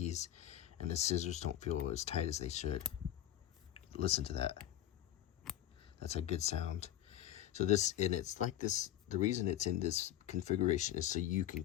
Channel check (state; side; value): quieter; right; 12.3 dB